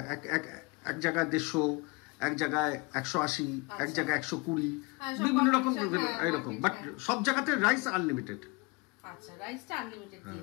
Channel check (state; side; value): quieter; right; 26.7 dB